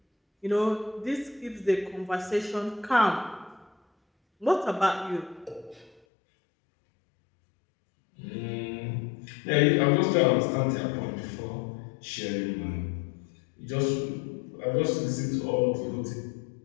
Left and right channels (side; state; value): right; drops out; at 6.0 s